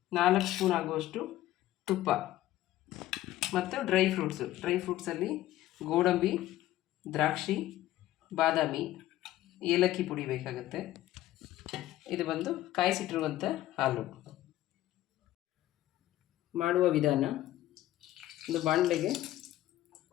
4 ಸ್ಪೂನ್ ಆಗುವಷ್ಟು ತುಪ್ಪ ಮತ್ತು ಡ್ರೈ ಫ್ರೂಟ್ಸಲ್ಲಿ ಗೋಡಂಬಿ, ದ್ರಾಕ್ಷಿ, ಬಾದಾಮಿ, ಏಲಕ್ಕಿ ಪುಡಿ ಬೇಕಾಗುತ್ತೆ. ಇದು ಬಂದು ಕಾಯಿಸಿಟ್ಟಿರುವಂಥ ಹಾಲು. ಮಾಡುವ ವಿಧಾನ: ಒಂದು ಬಾಣಲೆಗೆ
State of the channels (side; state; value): right; quieter; 14.7 dB